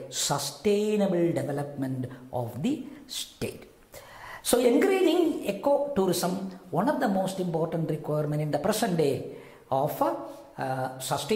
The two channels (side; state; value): both; identical; correlation 1.00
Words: sustainable development of the state. So encouraging eco-tourism, one of the most important requirements in the present day of